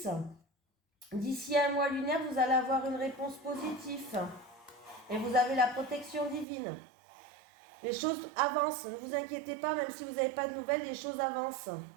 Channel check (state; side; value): drops out; left; at 6.5 s